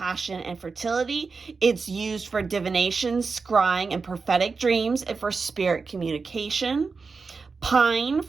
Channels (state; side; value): quieter; left; 4.6 dB